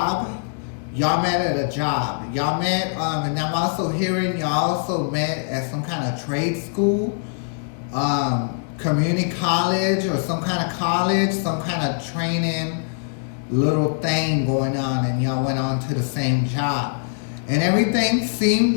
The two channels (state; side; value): silent; right; digital silence